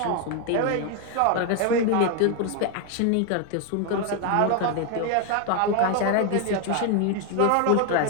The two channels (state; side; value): different; both; correlation 0.01